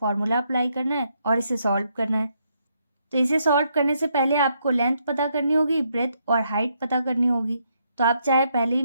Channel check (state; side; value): inverted; both; correlation -0.75